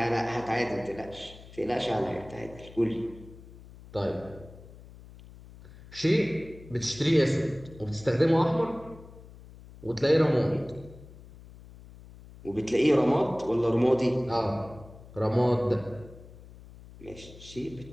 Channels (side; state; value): left; noise; hum, 19 dB below the sound